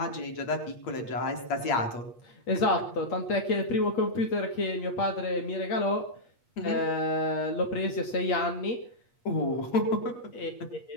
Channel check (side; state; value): right; late; 8.7 ms